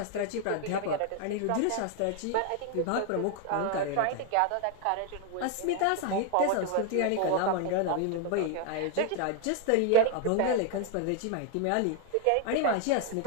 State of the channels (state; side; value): different; both; correlation 0.01